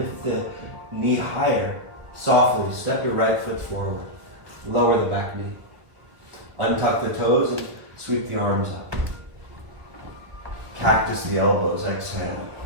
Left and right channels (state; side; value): late; left; 1.7 ms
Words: the knee higher. Softly step your right foot forward. Lower the back knee. Untuck the toes and sweep the arms up. Cactus the elbows. Exhale.